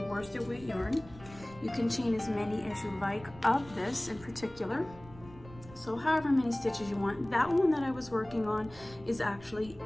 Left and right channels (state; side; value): noise; right; rumble, 19 dB below the sound